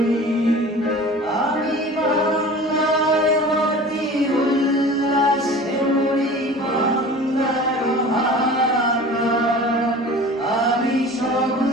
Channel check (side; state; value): both; normal; correlation 0.40